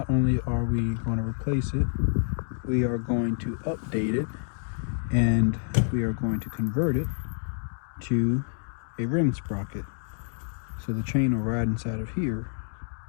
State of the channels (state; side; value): silent; right; digital silence